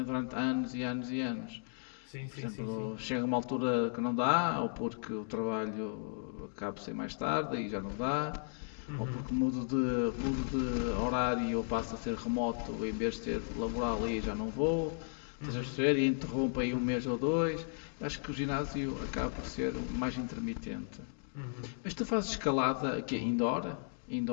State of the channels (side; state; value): right; silent; digital silence